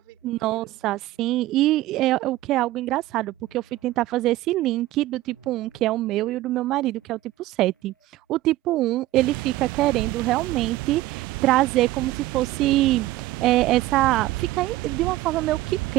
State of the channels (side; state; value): left; quieter; 16.4 dB